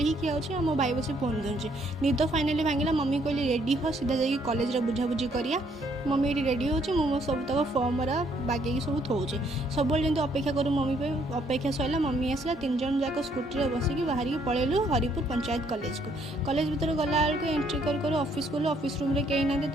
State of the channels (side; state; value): both; normal; correlation 0.68